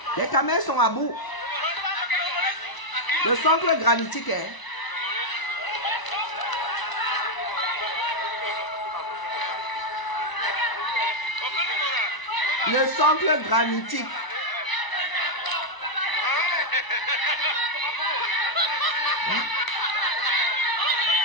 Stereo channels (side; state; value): right; late; 1.0 ms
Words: Les caméras sont à bout. Le socle granitique est... Le socle granitique.